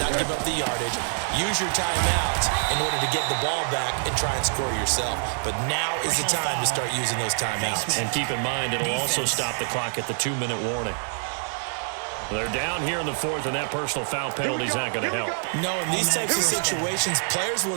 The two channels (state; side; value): silent; left; digital silence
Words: not give up the yardage, use your timeouts in order to get the ball back and try and score yourself. But now is the time to start using those timeouts. And keep in mind, it'll also stop the clock at the 2-minute warning. They're down here in the 4th, and that personal foul penalty is not going to help. No, in these types of situations, players